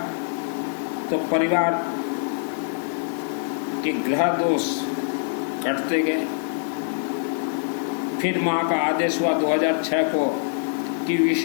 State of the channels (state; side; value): silent; right; digital silence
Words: तो परिवार के ग्रह दोष कटते गए। फिर माँ का आदेश हुआ 2006 को कि